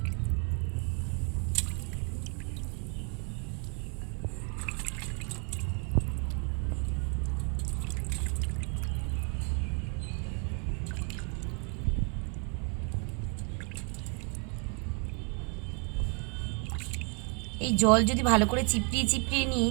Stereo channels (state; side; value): quieter; left; 36.6 dB